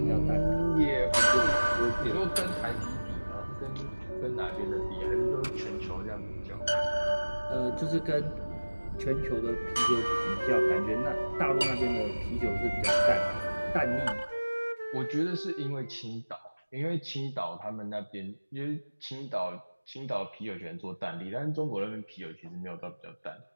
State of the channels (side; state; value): both; inverted; correlation -1.00